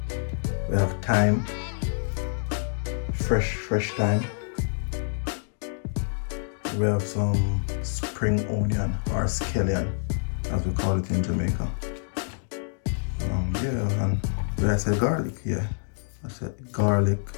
We have thyme, fresh thyme. We have some spring onion or scallion, as we call it in Jamaica. Yeah, and did I say garlic? Yeah, I said garlic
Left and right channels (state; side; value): silent; right; digital silence